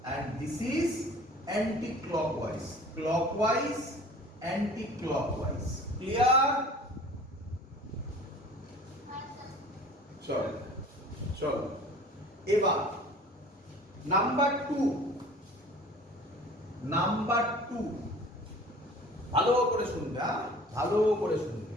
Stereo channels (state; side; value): normal; both; correlation 0.46